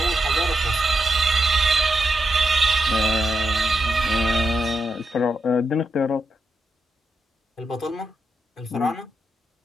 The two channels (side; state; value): both; normal; correlation 0.85